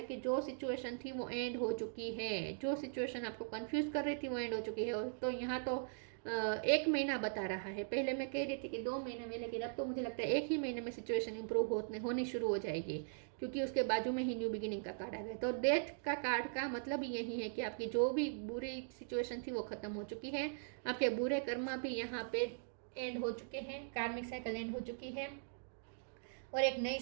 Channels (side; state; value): left; silent; digital silence